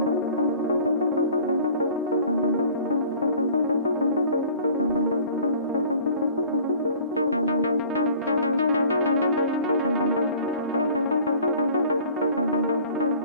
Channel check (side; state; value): both; inverted; correlation -0.49